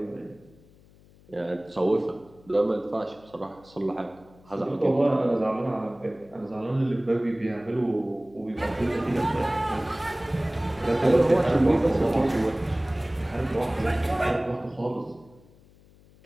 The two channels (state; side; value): noise; left; hum, 27 dB below the sound